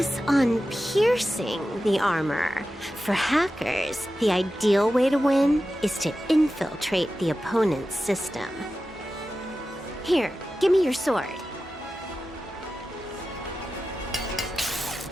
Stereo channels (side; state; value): both; normal; correlation 0.93